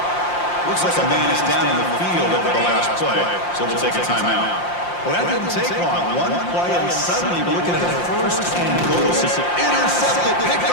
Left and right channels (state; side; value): late; right; 5.7 ms